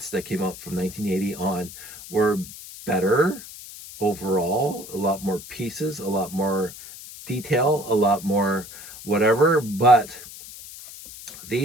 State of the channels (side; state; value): left; noise; hiss, 15 dB below the sound